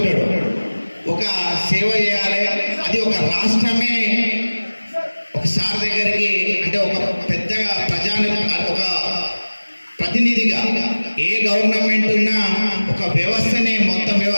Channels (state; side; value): inverted; both; correlation -1.00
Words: ఒక సేవ చేయాలి, అది ఒక రాష్ట్రమే ఒక సార్ దగ్గరికి అంటే ఒక పెద్దగా ఒక ప్రతినిధిగా ఏ గవర్నమెంట్ ఉన్నా ఒక వ్యవస్థనే మొత్తం